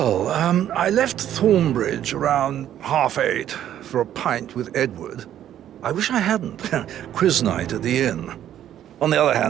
I left Thornbridge around 8:30 for a pint with Edward. I wish I hadn't. Quiz night at the inn. On the other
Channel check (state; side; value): quieter; left; 11.1 dB